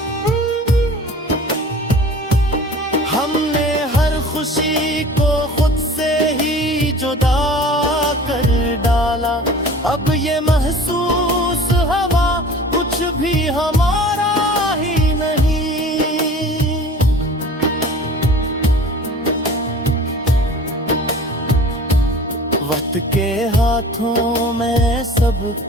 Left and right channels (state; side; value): normal; both; correlation 0.43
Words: हमने हर खुशी को खुद से ही जुदा कर डाला, अब ये महसूस हवा कुछ भी हमारा ही नहीं। वक्त के हाथों में सब